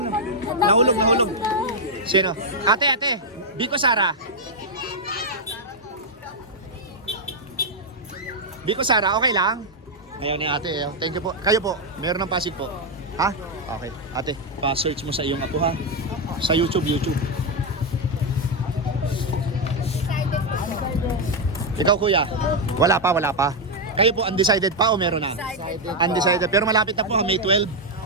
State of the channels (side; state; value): both; normal; correlation 0.00